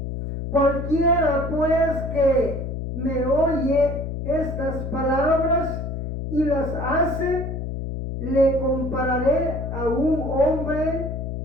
cualquiera pues que me oye estas palabras y las hace, le compararé a un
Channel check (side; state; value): left; noise; hum, 5 dB below the sound